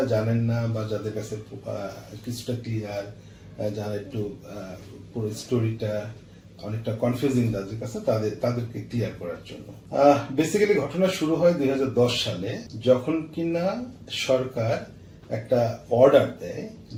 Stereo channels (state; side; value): identical; both; correlation 1.00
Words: জানেন না বা যাদের কাছে কিছুটা ক্লিয়ার, যারা একটু পুরো স্টোরিটা অনেকটা কনফিউজিং তাদের কাছে, তাদেরকে ক্লিয়ার করার জন্য। বেসিক্যালি ঘটনা শুরু হয় 2010 সালে, যখন কিনা সরকার একটা অর্ডার দেয়